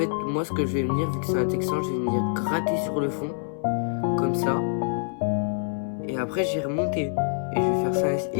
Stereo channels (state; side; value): silent; right; 60 dB below the other